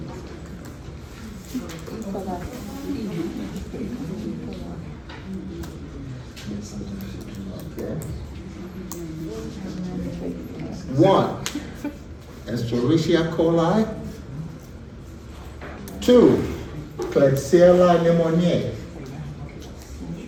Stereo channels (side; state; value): both; identical; correlation 1.00